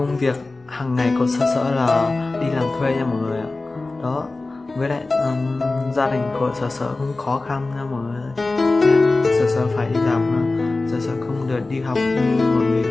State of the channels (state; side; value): quieter; right; 3.3 dB